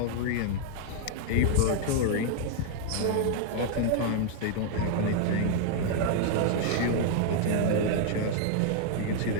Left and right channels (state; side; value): different; both; correlation 0.00